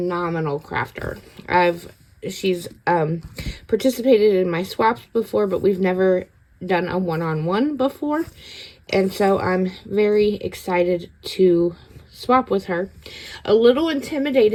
crafter. She's participated in my swaps before, but we've never done a one-on-one before, and so I'm very excited to swap with her. A little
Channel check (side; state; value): both; identical; correlation 1.00